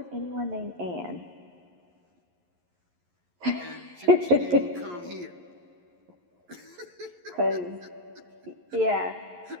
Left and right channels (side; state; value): left; late; 11 ms